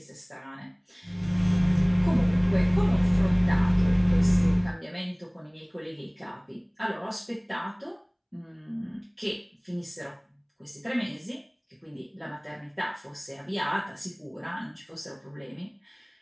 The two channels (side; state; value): both; identical; correlation 1.00